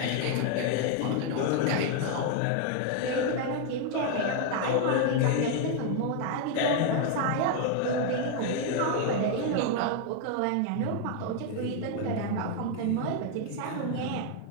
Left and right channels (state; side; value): different; both; correlation 0.00